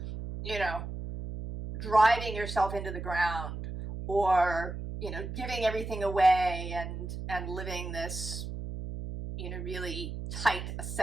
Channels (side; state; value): right; noise; hum, 7 dB below the sound